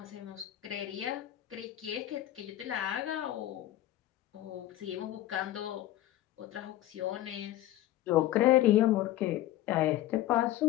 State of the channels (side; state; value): right; quieter; 14.3 dB